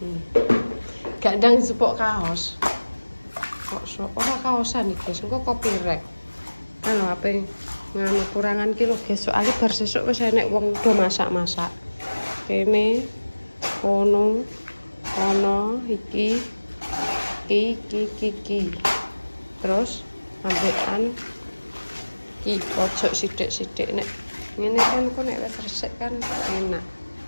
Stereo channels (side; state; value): both; inverted; correlation -1.00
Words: Gak ndang sepok kaos. Kok ora kaosan iki guys, engko copyright. Kan apa nganu kurangan kilo guys, soalnya bar sesuk wis enek wong do masak-masak. Kene kono iki. Terus ambekan iki pojok sithik-sithik nek ngene kan kok nek wis resik kan enak.